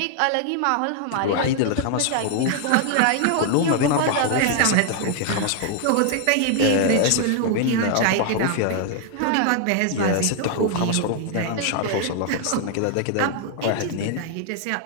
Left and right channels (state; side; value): different; both; correlation 0.00